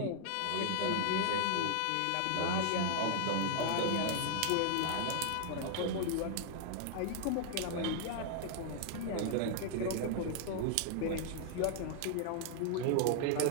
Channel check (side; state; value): both; different; correlation 0.00